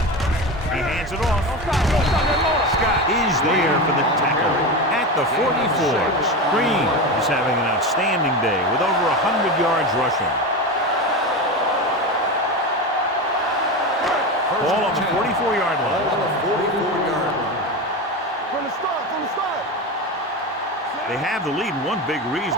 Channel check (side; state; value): both; normal; correlation 0.21